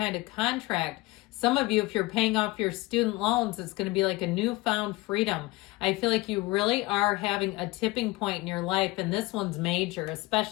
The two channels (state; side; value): quieter; right; 21.0 dB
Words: of contract. Some of you, if you're paying off your student loans, it's going to be like a newfound freedom. I feel like you really are having a tipping point in your life, and this one's major,